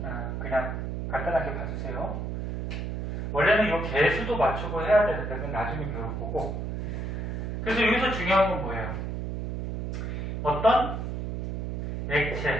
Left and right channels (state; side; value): noise; right; hum, 3 dB below the sound